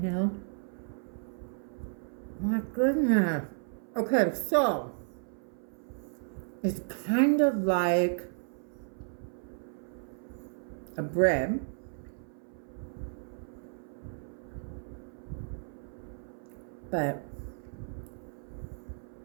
here. My goodness. Okay, so it's kind of like a bread, but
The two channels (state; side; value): silent; left; 56 dB below the other